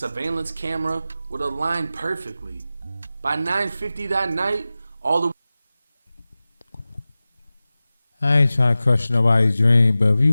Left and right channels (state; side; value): inverted; both; correlation -0.96